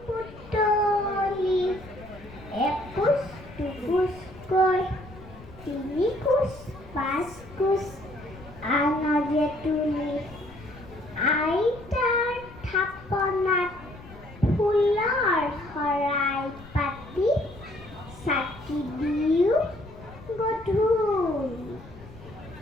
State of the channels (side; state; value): left; noise; rumble, 18 dB below the sound